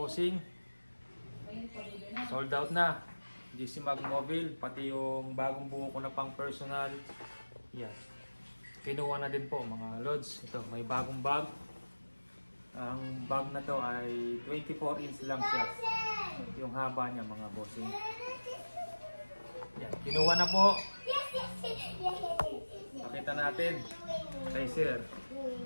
Sold out na GC Mag Mobile, pati yung bagong buo ko na pang personal. Yan, kinuha na din po mga lods. Ito, may bagong bag. Ang bag na to ay 24 inch lang siya, yung haba niya mga bossing. Yan, kinuha na po. Pakita natin kay sir.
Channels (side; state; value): both; inverted; correlation -1.00